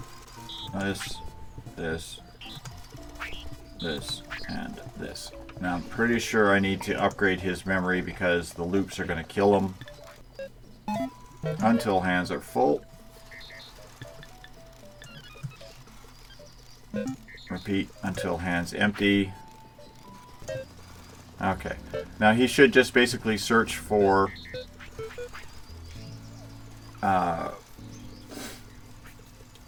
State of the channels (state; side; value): identical; both; correlation 1.00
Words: this, and this. Now I'm pretty sure I need to upgrade his memory because the loops are going to kill him until hands are full. Repeat until hands empty. Okay. Now he should just basically search for